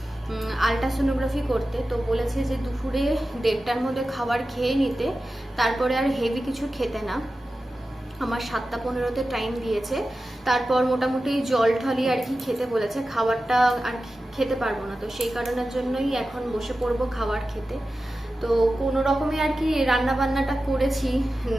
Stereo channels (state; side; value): normal; both; correlation 0.94